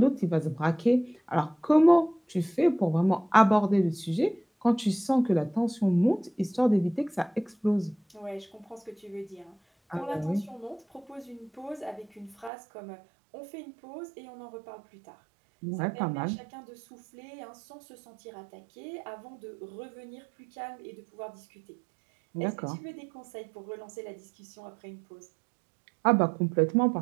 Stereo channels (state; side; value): drops out; left; at 12.5 s